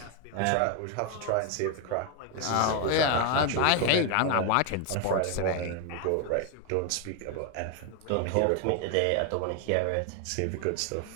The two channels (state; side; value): different; both; correlation 0.01